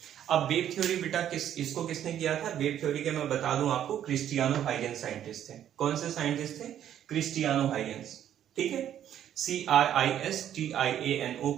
अब वेव थ्योरी बेटा इसको किसने किया था? वेव थ्योरी के मैं बता दूं आपको, क्रिस्टियानो हाइगेन्स साइंटिस्ट थे। कौन से साइंटिस्ट थे? क्रिस्टियानो हाइगेन्स। ठीक है, CRISTIANO,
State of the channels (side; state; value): left; quieter; 10.5 dB